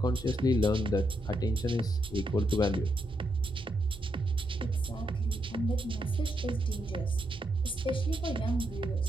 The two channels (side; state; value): both; normal; correlation 0.81